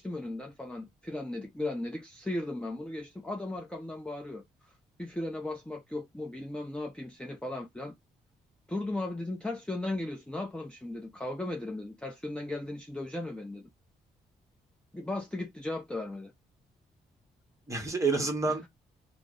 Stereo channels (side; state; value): both; normal; correlation 0.78